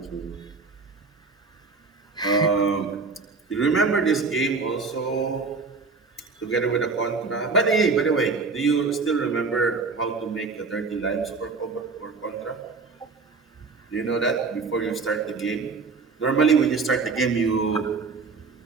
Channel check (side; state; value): left; quieter; 4.4 dB